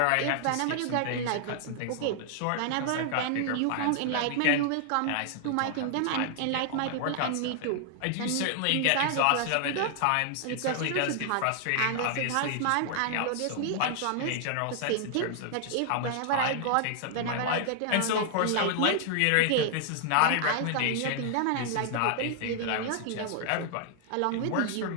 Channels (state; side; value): different; both; correlation 0.00